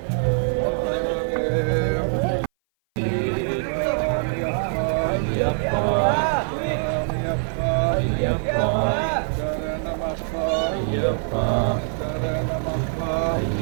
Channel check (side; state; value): left; silent; 58 dB below the other